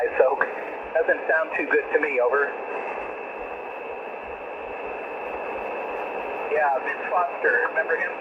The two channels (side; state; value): both; identical; correlation 1.00